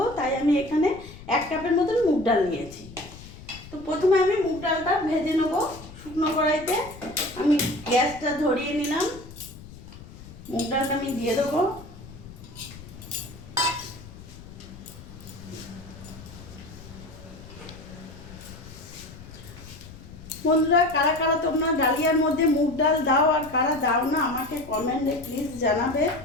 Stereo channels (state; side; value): noise; left; rumble, 17 dB below the sound